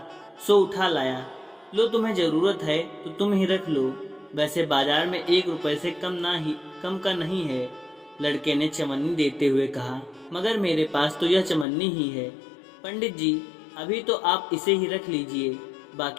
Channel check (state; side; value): drops out; right; at 11.7 s